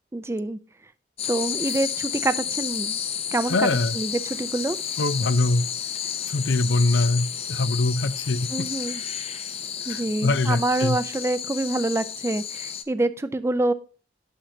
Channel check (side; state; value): both; normal; correlation 0.61